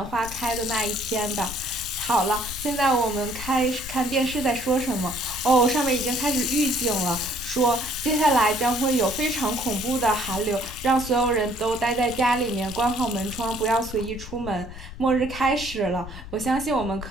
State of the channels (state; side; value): noise; left; rumble, 13 dB below the sound